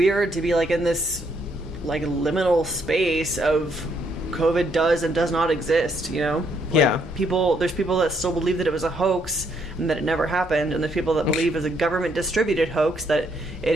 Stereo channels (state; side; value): normal; both; correlation 0.72